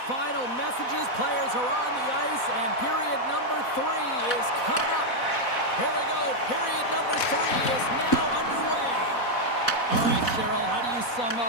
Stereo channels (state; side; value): late; right; 4.1 ms